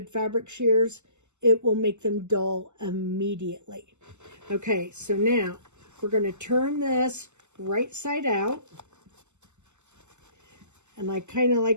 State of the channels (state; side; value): late; left; 0.83 ms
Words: fabric shears. It will make them dull immediately. Okay, so now we're going to turn this right side out. And I kind of